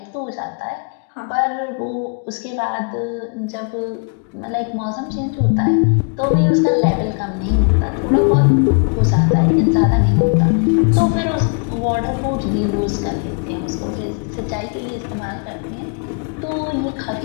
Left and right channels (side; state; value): right; quieter; 39.8 dB